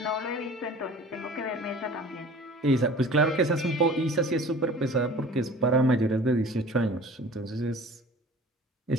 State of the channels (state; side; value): normal; both; correlation 0.44